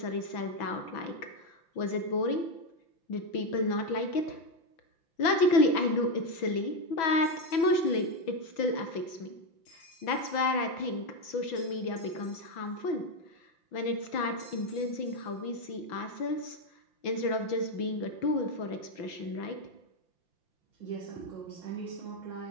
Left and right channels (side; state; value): right; late; 6.1 ms